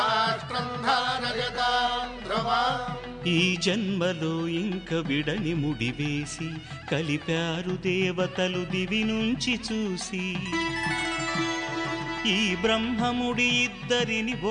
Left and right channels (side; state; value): both; identical; correlation 1.00